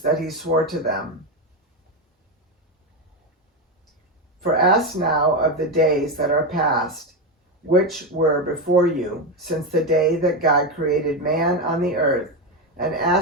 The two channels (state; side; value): normal; both; correlation 0.12